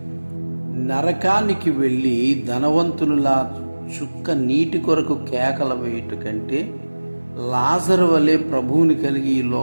నరకానికి వెళ్ళి ధనవంతులులా చుక్క నీటి కొరకు కేకల వేయుట కంటే లాజరు వలె ప్రభువుని కలిగి ఈ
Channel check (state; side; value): inverted; both; correlation -1.00